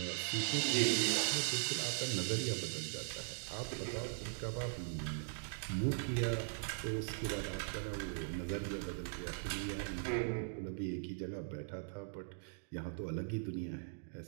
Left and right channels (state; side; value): silent; left; digital silence